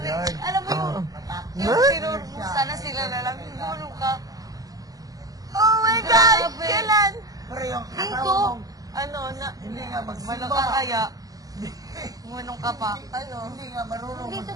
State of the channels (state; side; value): late; left; 0.17 ms